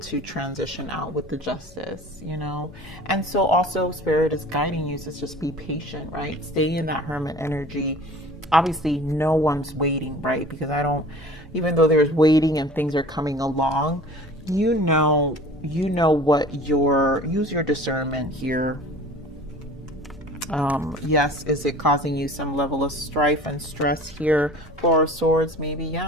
transition out with the Justice, you know. And so also Spirit is guiding you to just be patient, right? Stay in that Hermit energy. Obviously no one's waiting, right? Because even though there's waiting and things are coming along, you know what use your discernment here. Yes, is it causing you some level of strife and stress here? 4 of Swords, maybe,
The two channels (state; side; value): normal; both; correlation 0.44